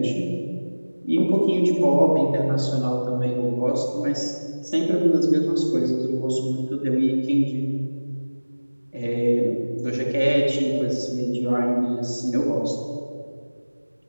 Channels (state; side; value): inverted; both; correlation -1.00